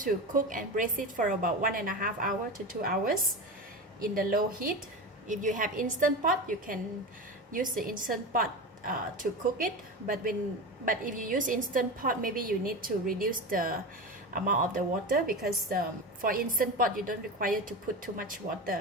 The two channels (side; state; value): both; normal; correlation 0.24